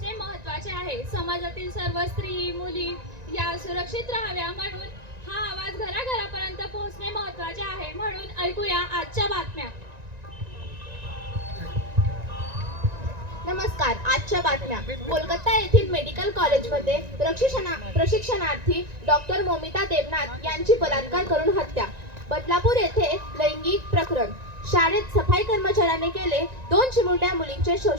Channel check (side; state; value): left; late; 1.9 ms